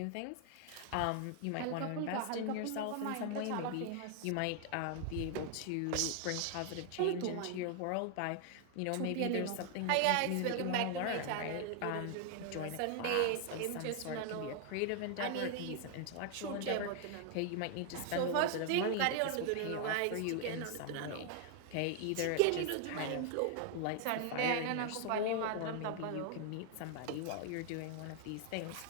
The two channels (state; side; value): different; both; correlation 0.00